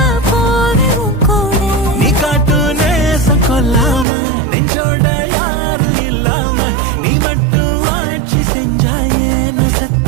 கொல்லாம நெஞ்சோட யாரும் இல்லாம நீ மட்டும் ஆட்சி செஞ்சாயே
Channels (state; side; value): drops out; left; at 4.0 s